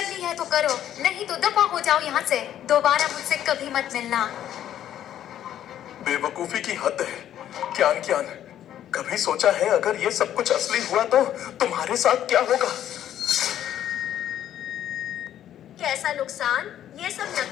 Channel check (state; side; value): quieter; right; 11.1 dB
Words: है तो करो, नहीं तो दफा हो जाओ यहाँ से। दोबारा मुझसे कभी मत मिलना। बेवकूफी की हद है। क्या कभी सोचा है अगर ये सब कुछ असली हुआ तो तुम्हारे साथ क्या होगा? कैसा नुकसान? ये सब